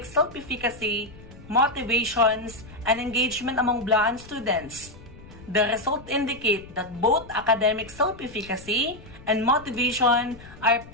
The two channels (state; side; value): noise; left; rumble, 19 dB below the sound